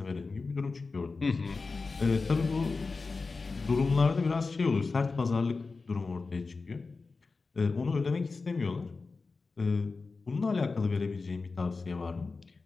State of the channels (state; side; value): quieter; right; 4.1 dB